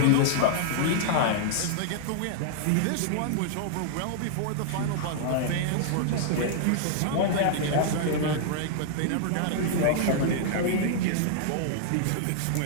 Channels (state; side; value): different; both; correlation -0.01